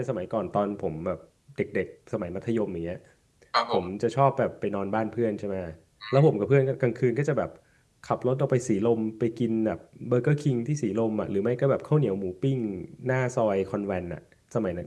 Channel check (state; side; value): identical; both; correlation 1.00